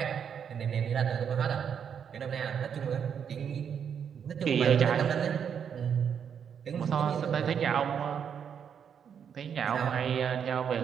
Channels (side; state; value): left; quieter; 7.7 dB